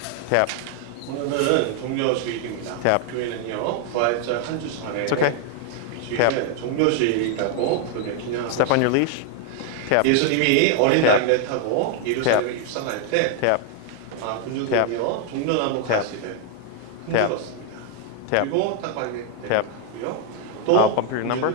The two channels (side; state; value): both; different; correlation 0.00